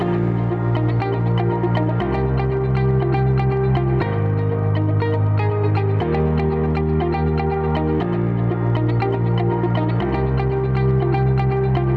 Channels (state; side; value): identical; both; correlation 1.00